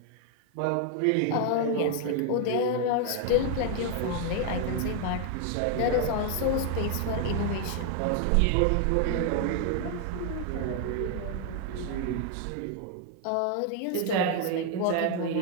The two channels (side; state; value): both; different; correlation 0.00